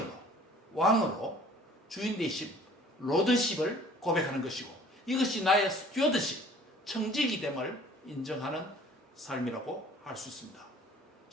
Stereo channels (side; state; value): both; normal; correlation 0.51